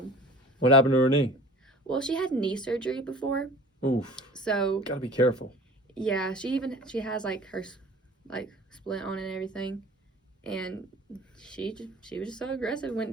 What happened to her knee? Well, she had knee surgery before. Oof. So gotta be careful. Yeah, she has like her like splint on and everything. And she was just so aggressive,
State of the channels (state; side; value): normal; both; correlation 0.43